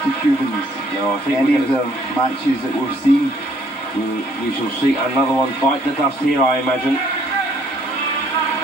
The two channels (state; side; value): normal; both; correlation 0.64